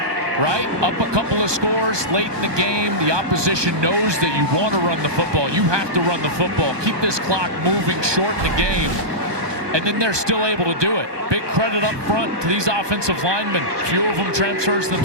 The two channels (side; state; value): left; late; 1.2 ms